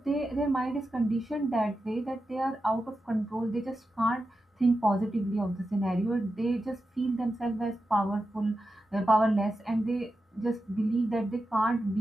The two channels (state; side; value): normal; both; correlation 0.90